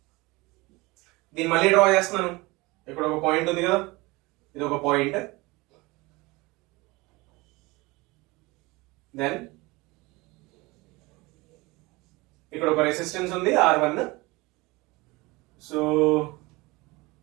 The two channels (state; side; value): quieter; left; 23.1 dB